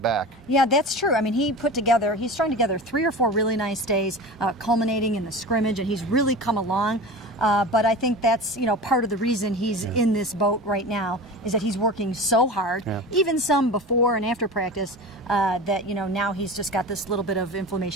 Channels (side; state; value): both; normal; correlation 0.32